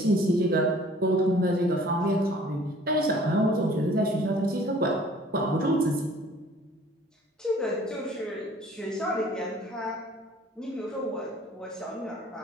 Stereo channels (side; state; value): both; normal; correlation 0.53